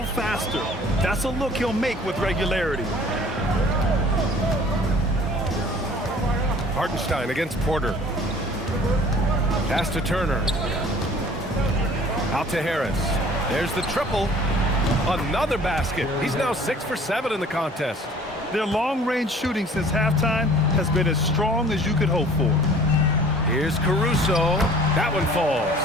faster. That's a look he'll make with regularity. Hartenstein against Porter. Pass to Turner. Out to Harris. There's the triple. Another basket. He's now 6 for 7 in the contest. Their long-range shooting since halftime has been as strong as you could hope for. Here's Caruso. That one falls.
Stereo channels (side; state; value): both; normal; correlation 0.50